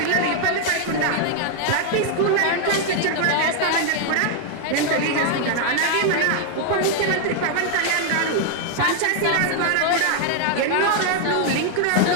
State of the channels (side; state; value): both; different; correlation 0.00